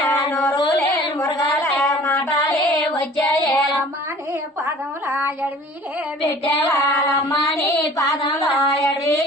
నోరులే మురగాల మాటాలే వచ్చాయే అమ్మాని పాదముల ఎడవిలే పెట్టేవాళ్ళమ్మని పాదంలో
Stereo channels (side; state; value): both; normal; correlation 0.48